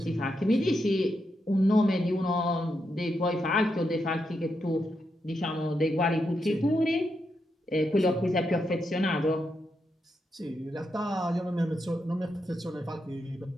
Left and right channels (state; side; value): normal; both; correlation 0.83